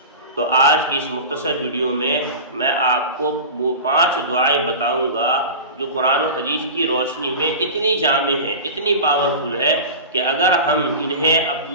تو آج کی اس مختصر ویڈیو میں آپ کو وہ 5 دعائیں بتاؤں گا جو قرآن و حدیث کی روشنی میں اتنی جامع ہے، اتنی پاورفل ہے کہ اگر ہم انہیں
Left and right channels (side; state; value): both; inverted; correlation -0.31